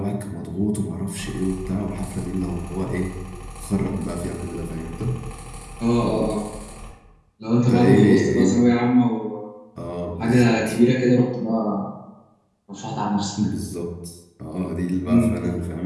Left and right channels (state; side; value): identical; both; correlation 1.00